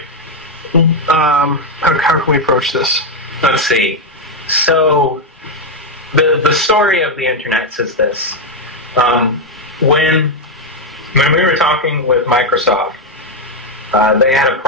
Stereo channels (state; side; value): normal; both; correlation 0.03